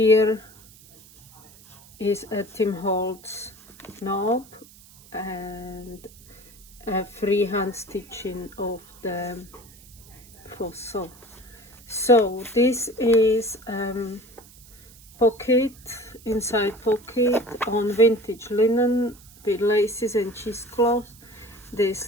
is a Tim Holtz knob and a freehand stitching of the fossil. So this is pocket, inside pocket on vintage linen with laces and cheesecloth. This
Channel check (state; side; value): noise; right; hiss, 23 dB below the sound